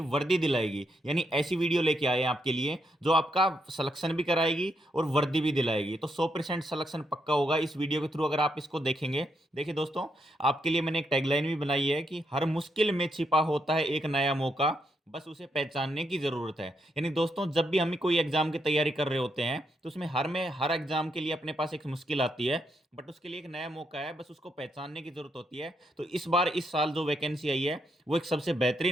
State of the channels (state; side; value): normal; both; correlation 0.79